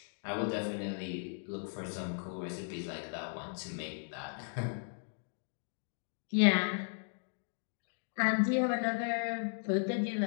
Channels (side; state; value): right; silent; digital silence